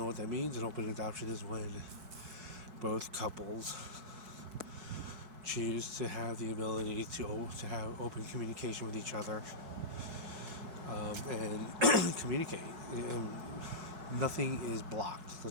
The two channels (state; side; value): late; left; 4.6 ms